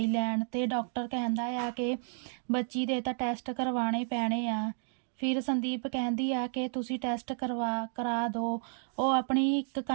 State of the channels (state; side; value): silent; left; digital silence